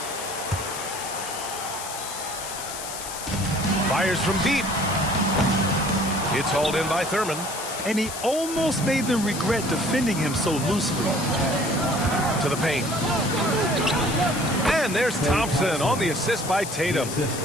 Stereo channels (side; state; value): left; noise; hiss, 8 dB below the sound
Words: Fires from deep. It's hauled in by Thurman. And he almost made them regret defending him so loosely. To the paint. And there's Thompson on the assist by Tatum.